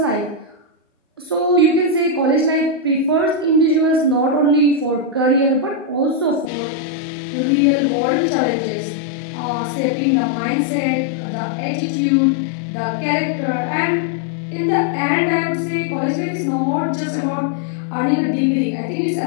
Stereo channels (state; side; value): drops out; right; at 6.5 s